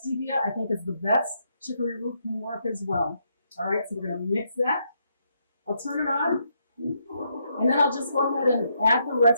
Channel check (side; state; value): both; inverted; correlation -0.77